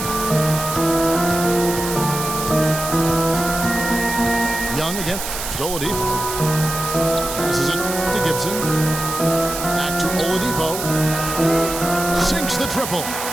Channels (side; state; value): right; noise; hiss, 6 dB below the sound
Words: Young again. Oladipo. Passes it to Gibson. Back to Oladipo. Sinks the triple.